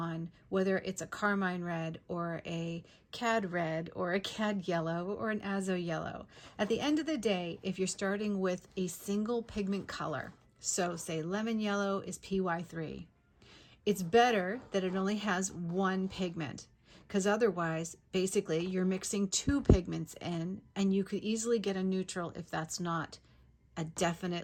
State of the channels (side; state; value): both; identical; correlation 1.00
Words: whether it's a carmine red or a cad red or a cad yellow or an azo yellow. At the end of the day, if you're starting with a single pigment color, so say lemon yellow is PY3, it's better that it only has 1 pigment, because otherwise, basically, you're mixing 2 pigments in, and you could easily get a neutral if that's not a